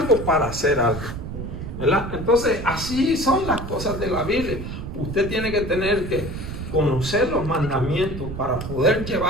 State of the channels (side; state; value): right; noise; rumble, 7 dB below the sound